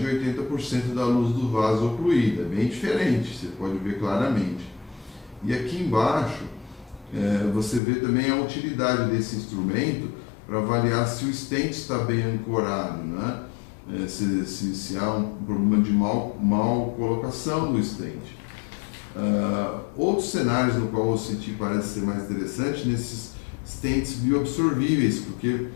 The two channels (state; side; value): drops out; right; at 7.8 s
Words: 80% da luz do vaso ocluída, bem diferente, você pode ver claramente. E aqui embaixo, você vê também a utilidade desse instrumento para avaliar se o stent está bem ancorado, né? Se há um problema de mal colocação do stent. Outros cenários no qual o OCT parece ser mais interessante, nesses stents bioabsorvíveis, porque